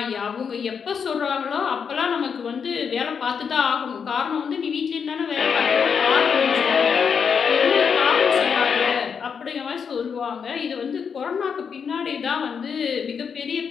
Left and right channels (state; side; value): quieter; right; 6.6 dB